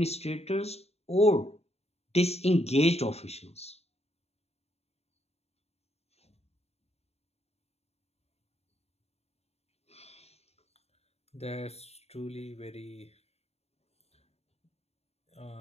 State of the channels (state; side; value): late; right; 0.30 ms